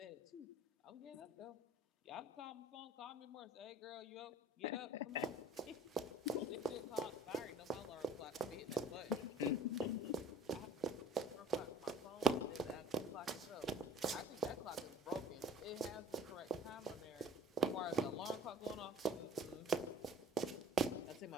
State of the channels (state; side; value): normal; both; correlation 0.50